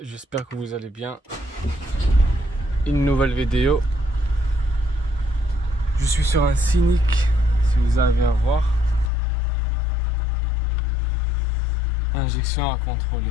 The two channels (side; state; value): right; drops out; at 9.1 s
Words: j'espère que vous allez bien. Une nouvelle vidéo. Je suis sur un Scénic, si vous arrivez à voir. Injection à